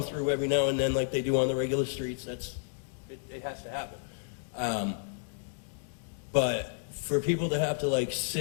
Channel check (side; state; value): right; silent; digital silence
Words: through every now and then, like they do on the regular streets. It has to happen. But for people to have to like